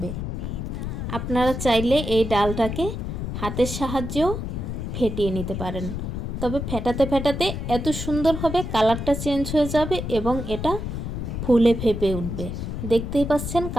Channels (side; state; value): left; noise; rumble, 4 dB below the sound